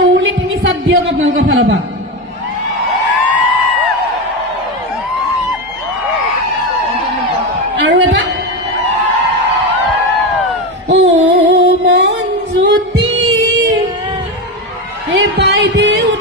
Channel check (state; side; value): normal; both; correlation 0.16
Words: উৰুলি 3 চাত দিয়ক আপোনালোকৰ ফালৰ পৰা আৰু এটা অ মন জ্যোতি এই